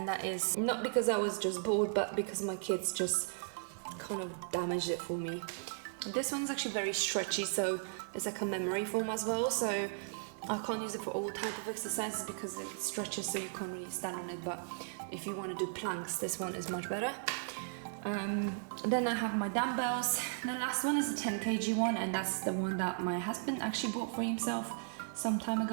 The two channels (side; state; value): left; silent; digital silence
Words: that is not because I was just bored, but because my kids just kind of damaged it for me. This one's actually very stretchy, so it's like a memory foam as well, so I can't use it for all type of exercises because it stretches, so you can't really stand on it. But if you want to do planks, this one is much better. Then I have my dumbbells. The last one is a 10 kg one, and that's the one that my husband actually bought for himself some time